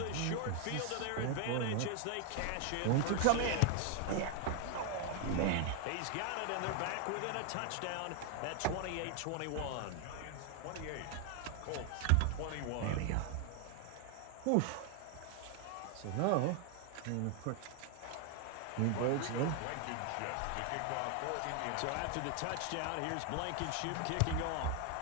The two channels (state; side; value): different; both; correlation 0.00